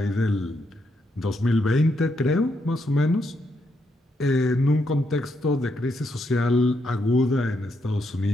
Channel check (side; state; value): both; normal; correlation 0.78